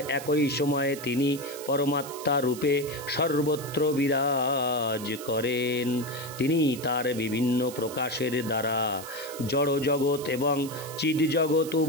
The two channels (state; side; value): noise; right; hiss, 13 dB below the sound